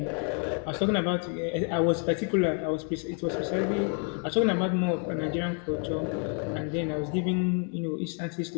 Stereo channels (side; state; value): right; quieter; 39.4 dB